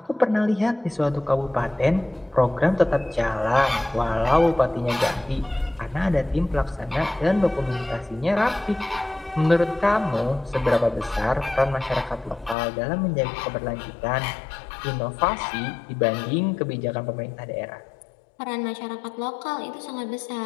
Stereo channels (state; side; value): drops out; right; at 12.6 s